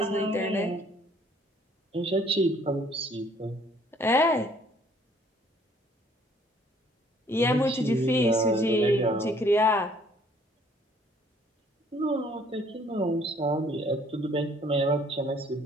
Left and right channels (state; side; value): normal; both; correlation 0.61